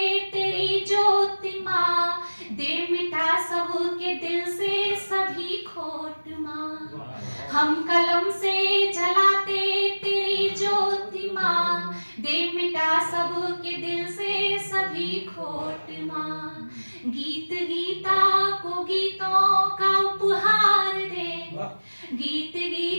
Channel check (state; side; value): inverted; both; correlation -1.00